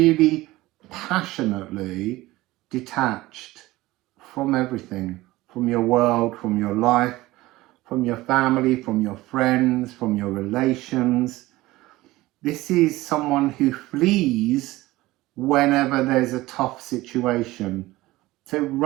passionately detached from everything, from your world, from your life, from your family, from your friends, from your relations. This is someone who flees whenever there's a tough situation. So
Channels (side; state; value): left; quieter; 18.5 dB